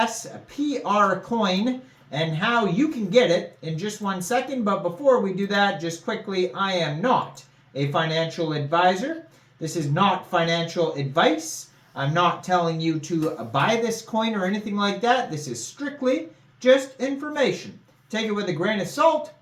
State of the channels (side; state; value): both; identical; correlation 1.00